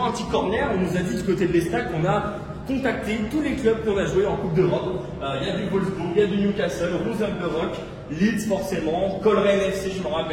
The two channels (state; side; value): identical; both; correlation 1.00